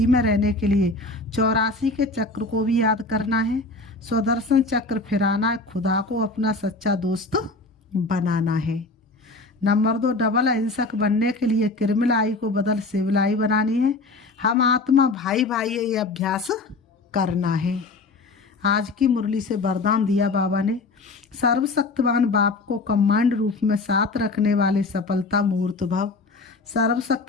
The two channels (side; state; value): right; quieter; 3.3 dB